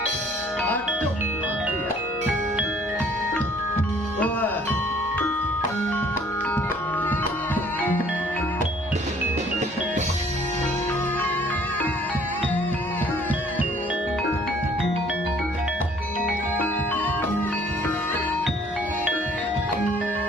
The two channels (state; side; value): normal; both; correlation 0.57